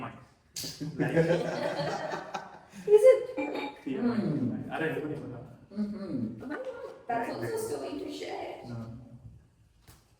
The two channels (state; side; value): identical; both; correlation 1.00